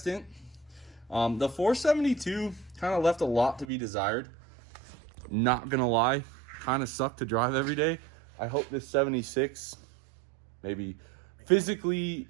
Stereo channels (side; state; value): left; drops out; at 3.7 s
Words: The 472 kind of left a lot to be desired. Not gonna lie. Kind of suck to drive every day. I hope this 76 maybe physically